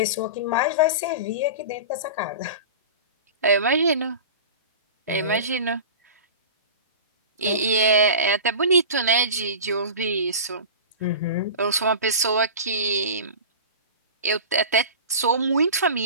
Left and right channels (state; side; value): inverted; both; correlation -0.33